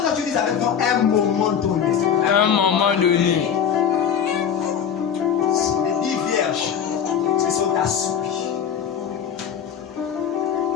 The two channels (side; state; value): right; quieter; 8.0 dB